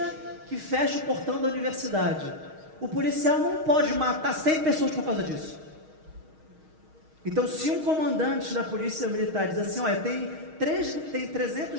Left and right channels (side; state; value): left; late; 6.4 ms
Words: que fecha o portão da universidade. O policial não pode matar 100 pessoas por causa disso. Então, se um comandante da polícia militar diz assim: olha, tem